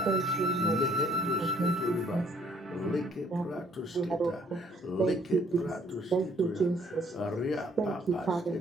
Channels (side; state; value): both; normal; correlation 0.62